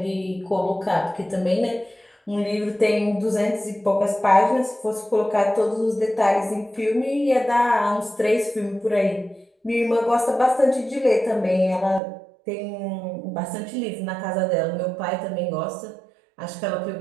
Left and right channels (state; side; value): drops out; left; at 12.0 s